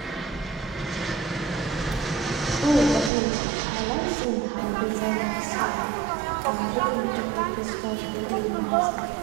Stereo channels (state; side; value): drops out; left; at 3.1 s